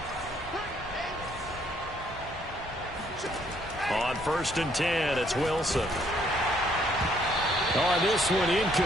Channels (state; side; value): normal; both; correlation 0.67